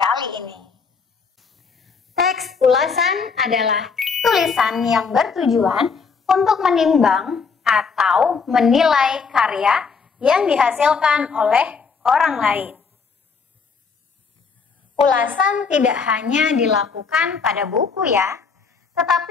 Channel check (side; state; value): right; quieter; 5.3 dB